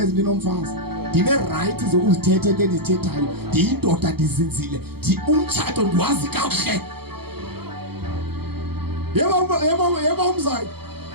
ndinomfazi. Ndine right zokuzithetha into endizithethayo. Ndiyindoda ndizinzile. Umtshato ndiwazi kakuhle. Yebo umzayi.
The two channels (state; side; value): late; left; 0.96 ms